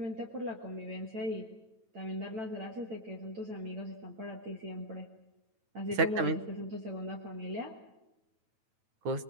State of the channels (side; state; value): left; late; 9.1 ms